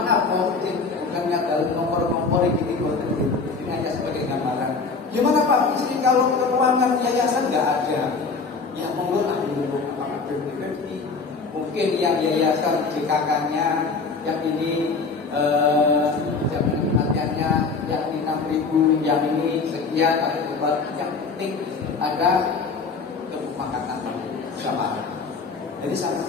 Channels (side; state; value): right; quieter; 4.5 dB